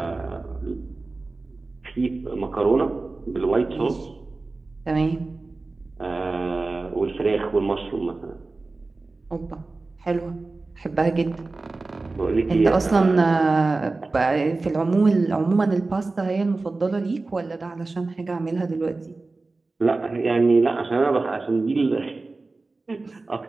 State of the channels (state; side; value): quieter; left; 3.5 dB